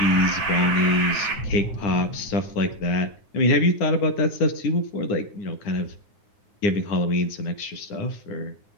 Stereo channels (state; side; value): late; right; 9.9 ms